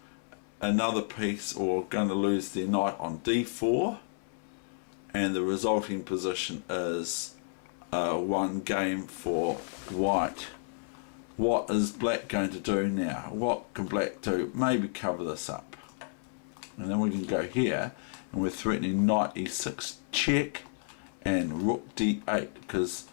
another piece, or going to lose their knight on d4. And the resulting position is one game for white. What is black going to do now? What can black do? Maybe cover this up. And then we can go here, and we're threatening knight e6 check and rook d8, because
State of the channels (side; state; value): right; silent; 57 dB below the other